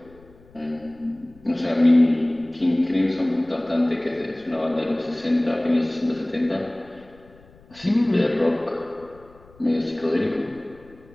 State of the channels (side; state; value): left; noise; rumble, 26 dB below the sound